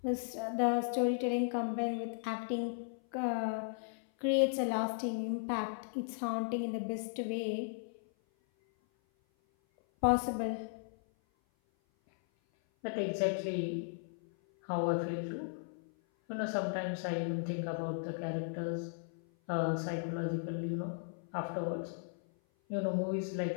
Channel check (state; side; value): silent; right; 54 dB below the other